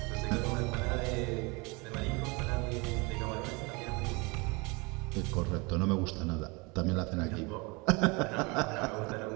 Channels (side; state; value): left; quieter; 27.8 dB